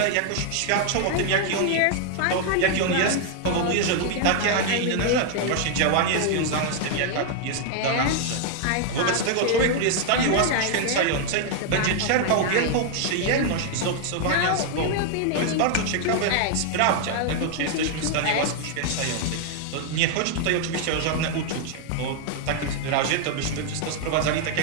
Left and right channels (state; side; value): different; both; correlation 0.00